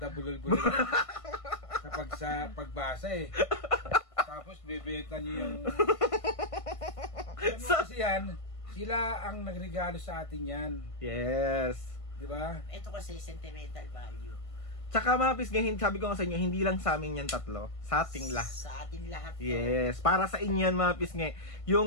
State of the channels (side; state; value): right; late; 1.5 ms